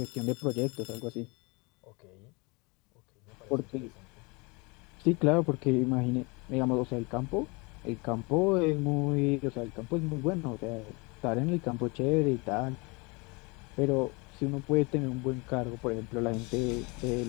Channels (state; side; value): quieter; right; 28.2 dB